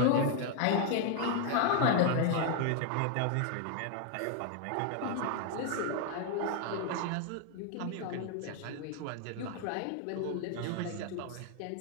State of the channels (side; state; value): both; different; correlation 0.00